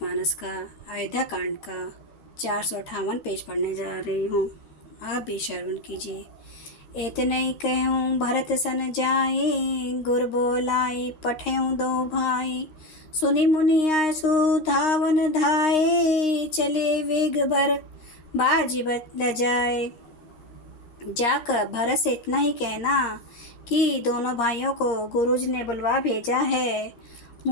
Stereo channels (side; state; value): right; late; 13 ms